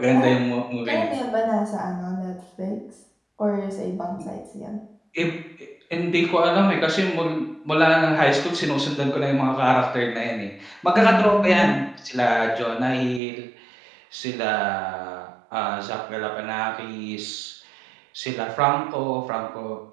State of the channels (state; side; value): drops out; left; at 13.2 s